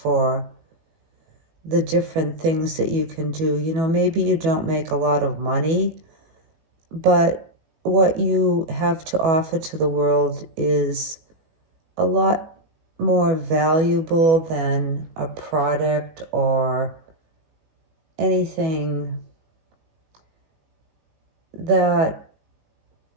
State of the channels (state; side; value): late; left; 19 ms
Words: the different things that you can do. Maybe you don't make a lot of money, but what you have to offer to the world is a lot more valuable than a product or anything that